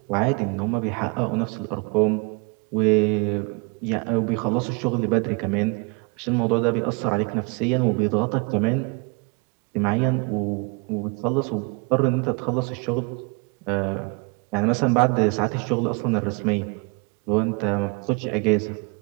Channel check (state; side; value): quieter; left; 31.9 dB